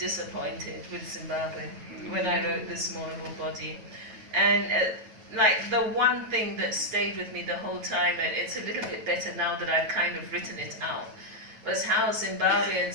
with Zimbabwe when I wrote this mournable body, and like the one thing that stayed with me the whole time, and it's a little bit better now that I've kind of written it out, was how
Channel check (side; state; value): left; late; 9.1 ms